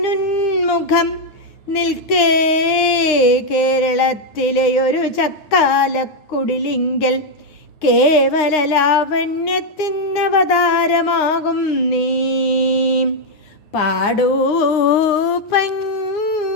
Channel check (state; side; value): late; right; 9.7 ms